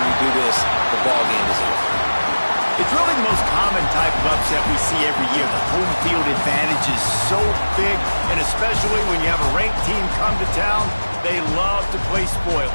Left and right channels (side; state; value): both; inverted; correlation -1.00